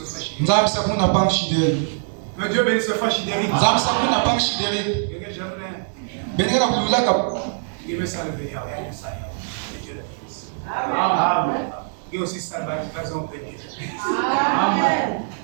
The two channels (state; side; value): silent; left; 64 dB below the other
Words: frère Chidéry. Que Dieu bénisse le frère Chidéry. Il me salve. Amen. Et aussi salve à Amen.